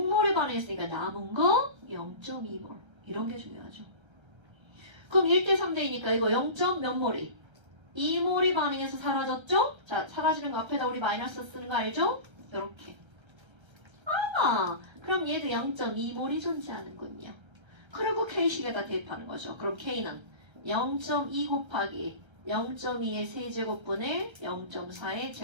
반응했으니까 남은 거 0.2몰. 이런 게 중요하죠. 그럼 1대 3대이니까 이거 0. 몇 몰이? 2몰이 반응해서 사라졌죠? 자, 사라지는 거 앞에다 우리 마이너스 쓰는 거 알죠? 이렇게. 그럼 얘도 0.2몰이 존재하는군요. 그리고 K식에다 대입하는 거죠. 그럼 K는 0.2 곱하기 0.2의 세제곱분의 0.4의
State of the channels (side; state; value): left; late; 1.3 ms